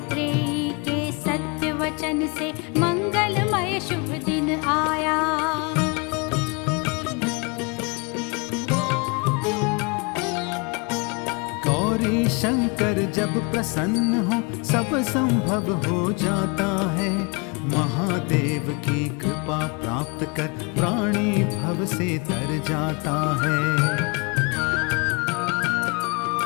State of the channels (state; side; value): quieter; right; 31.1 dB